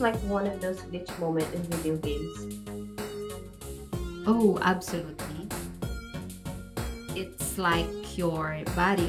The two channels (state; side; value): identical; both; correlation 1.00